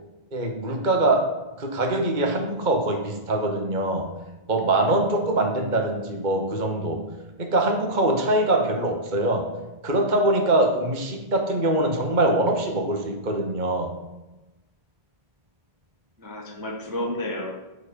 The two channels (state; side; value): late; left; 2.1 ms